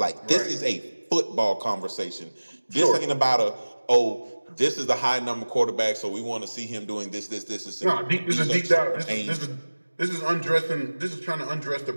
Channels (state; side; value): inverted; both; correlation -1.00